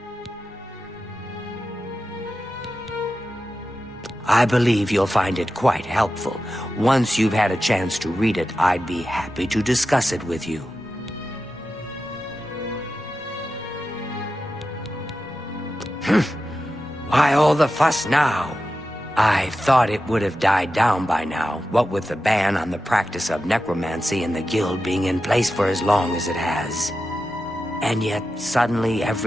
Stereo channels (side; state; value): both; normal; correlation 0.91